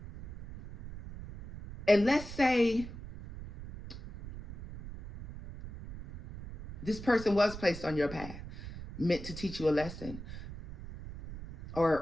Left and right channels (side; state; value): right; noise; rumble, 12 dB below the sound